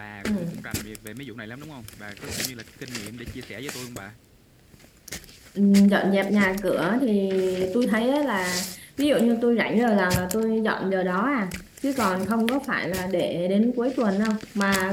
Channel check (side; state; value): both; identical; correlation 1.00